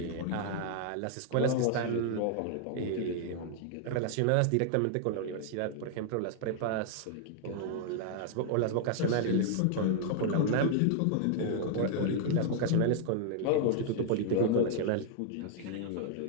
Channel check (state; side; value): different; both; correlation 0.00